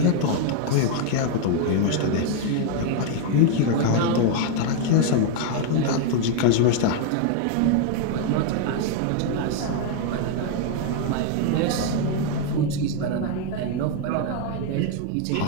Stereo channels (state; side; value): different; both; correlation 0.00